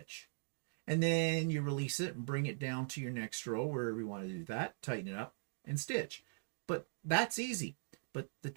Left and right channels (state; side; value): silent; left; digital silence